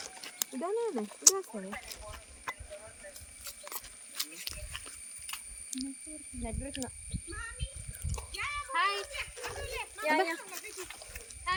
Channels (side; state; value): both; identical; correlation 1.00